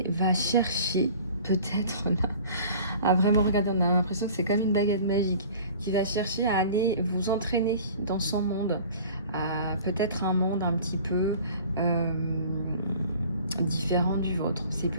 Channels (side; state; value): both; inverted; correlation -0.45